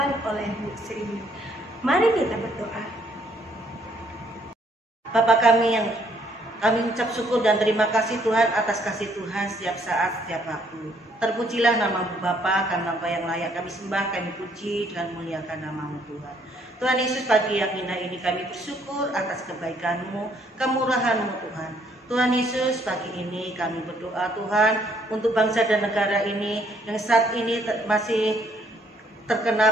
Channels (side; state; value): both; normal; correlation 0.67